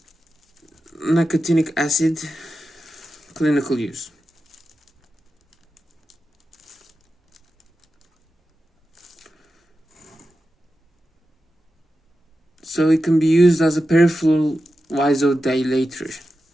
nicotinic acid, clinical use. So it can be used as a peripheral vasodilator.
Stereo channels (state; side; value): normal; both; correlation 0.91